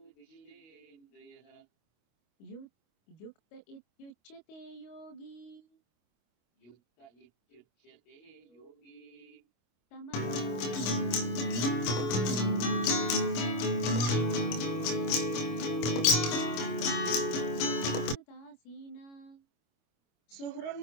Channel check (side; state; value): right; late; 25 ms